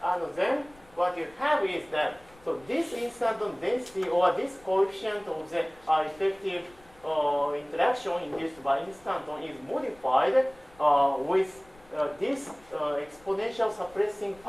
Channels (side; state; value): left; noise; rumble, 27 dB below the sound